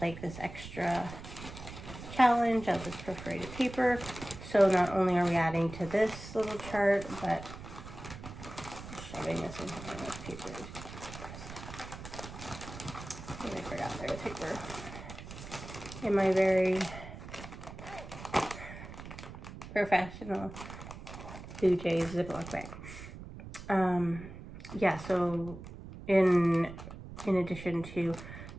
this extra challenge of this perforated paper. So not only are we adding to this little chart, but shoving this into one of those papers. I forgot there was paper in my very professional Blue Jays Ziploc bag. Yeah, so in addition to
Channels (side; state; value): right; noise; rumble, 12 dB below the sound